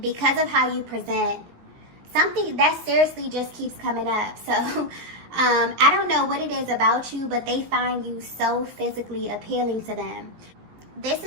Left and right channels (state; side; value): late; left; 18 ms